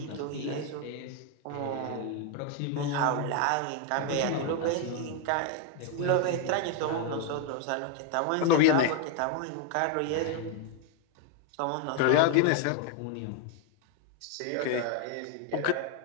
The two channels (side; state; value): both; different; correlation 0.01